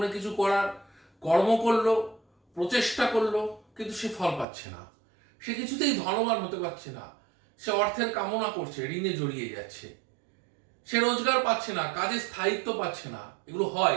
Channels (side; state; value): left; drops out; at 4.5 s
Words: কিছু করার, কর্ম করলো, প্রচেষ্টা করলো, কিন্তু সে ফল পাচ্ছে না। সে কিছুতেই ধনবান হতে পারছে না। সে অর্থের কামনা করছে, ঋণে জড়িয়ে যাচ্ছে। সে রোজগার পাচ্ছে না, কাজে স্থায়িত্ব পাচ্ছে না। এগুলো হয়